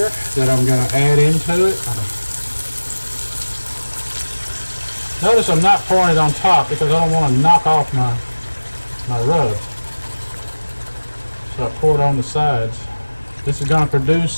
that I'm going to add into it. Notice I'm not pouring it on top because I don't want to knock off my rub. So I pour it on the sides. This is going to produce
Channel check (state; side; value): inverted; both; correlation -1.00